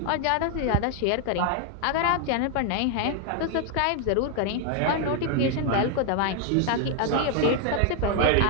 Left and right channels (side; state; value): both; different; correlation 0.00